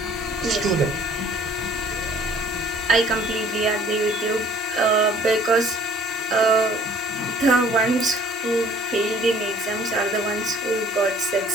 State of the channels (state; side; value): normal; both; correlation 0.55